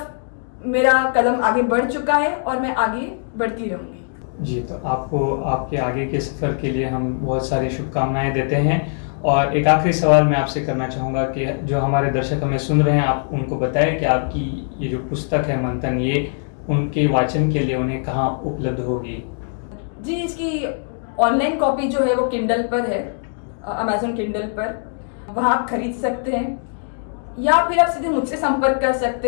मेरा कदम आगे बढ़ चुका है और मैं आगे बढ़ती रहूंगी। जी, तो आपको आपके आगे के सफ़र के लिए हम बहुत सारी शुभकामनाएं देते हैं। और एक आखिरी सवाल मैं आपसे करना चाहूँगा कि जो हमारे दर्शक हमें सुन रहे हैं, आप उनको बताएं कि आपकी ये जो पुस्तक है मंथन, ये उनके वाचन के लिए उन्हें कहाँ उपलब्ध होगी? जी, इसकी ऑनलाइन कॉपी जो है वो किंडल पर है, अमेजोन किंडल पर, वहाँ आप खरीद सकते हैं, या फिर आप सीधे मुझसे संपर्क कर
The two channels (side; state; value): right; silent; digital silence